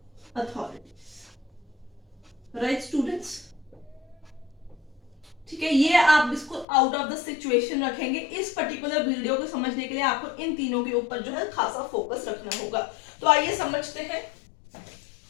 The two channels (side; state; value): right; drops out; at 6.7 s